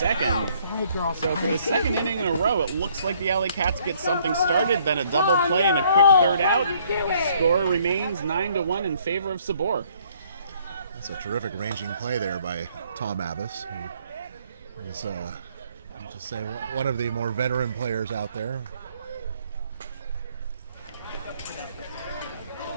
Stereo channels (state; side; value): inverted; both; correlation -0.64